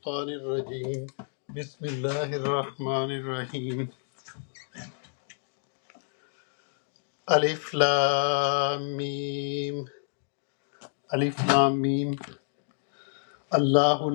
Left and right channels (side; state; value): right; silent; digital silence